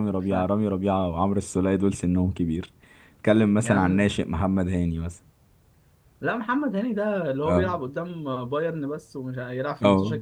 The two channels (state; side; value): identical; both; correlation 1.00